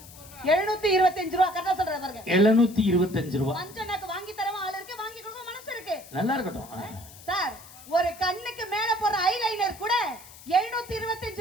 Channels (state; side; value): noise; left; hiss, 19 dB below the sound